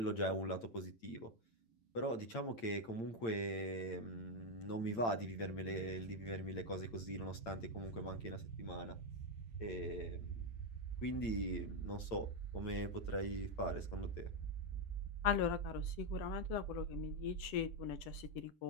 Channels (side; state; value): right; late; 8.8 ms